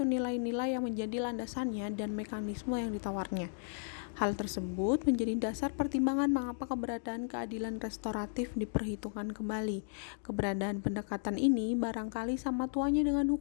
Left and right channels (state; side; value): silent; right; digital silence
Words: nilai-nilai yang menjadi landasannya dan mekanisme yang ditawarnya. Hal tersebut menjadi dasar pertimbangan mengapa keberadaan keadilan restoratif diperhitungkan kembali. Keberadaan pendekatan ini barangkali sama tuanya dengan